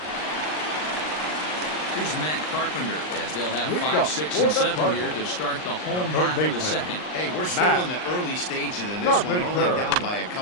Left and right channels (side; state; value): right; late; 39 ms